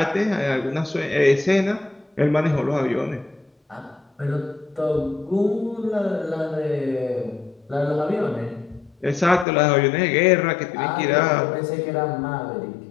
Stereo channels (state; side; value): drops out; right; at 9.5 s